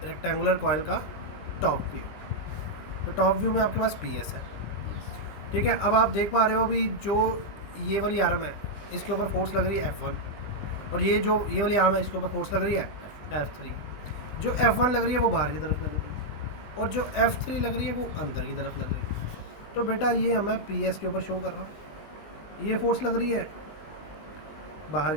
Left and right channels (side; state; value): right; late; 19 ms